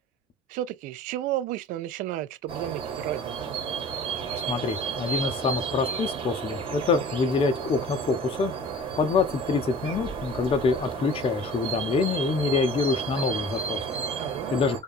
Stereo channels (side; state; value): both; normal; correlation 0.44